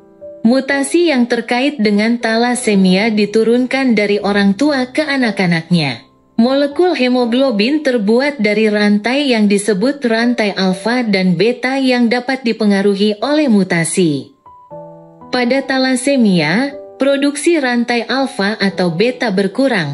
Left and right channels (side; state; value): both; identical; correlation 1.00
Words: Mutasi yang terkait dengan talasemia diturunkan dari orang tua ke anak-anaknya. Molekul hemoglobin terbuat dari rantai yang disebut rantai alfa dan beta yang dapat dipengaruhi oleh mutasi. Pada talasemia, produksi rantai alfa atau beta